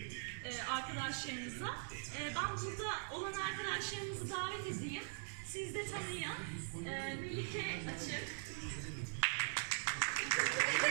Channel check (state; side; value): silent; left; digital silence